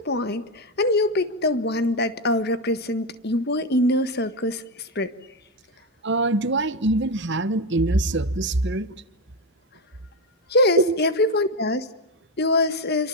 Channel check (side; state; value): both; normal; correlation 0.11